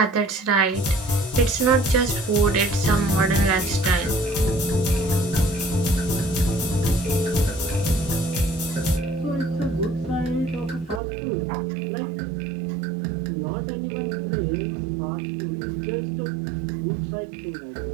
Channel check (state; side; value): drops out; left; at 11.0 s